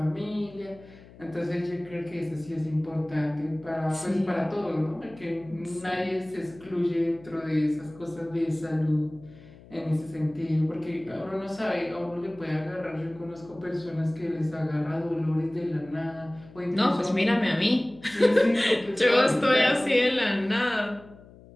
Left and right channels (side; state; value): left; noise; hum, 21 dB below the sound